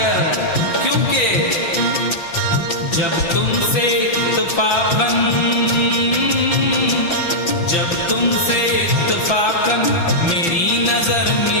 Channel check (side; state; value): right; late; 5.9 ms